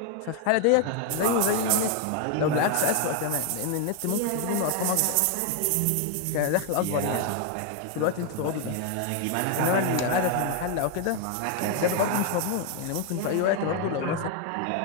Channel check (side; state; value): both; different; correlation 0.00